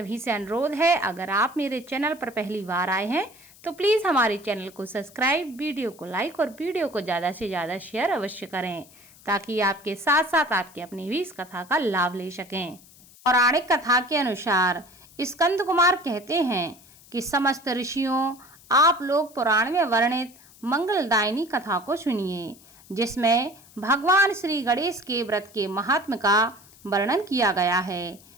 से अनुरोध है, अगर आप मेरे चैनल पर पहली बार आए हैं तो प्लीज हमारे चैनल को सब्सक्राइब, वीडियो को लाइक और वीडियो को ज्यादा से ज्यादा शेयर अवश्य करें, ताकि आपके साथ साथ आपके अपने भी इस कथा का लाभ ले सकें। पौराणिक कथा के अनुसार स्कंद कुमार कहते हैं कि समस्त ऋषियों, आप लोग पुराण में वर्णित मंगलदायिनी कथा को सुनिए, जिसमें भगवान श्री गणेश के व्रत के महात्म्य का वर्णन किया गया है।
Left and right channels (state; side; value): noise; left; hiss, 24 dB below the sound